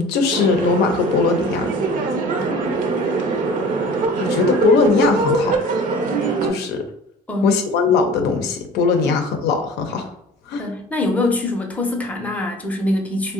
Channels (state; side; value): normal; both; correlation 0.43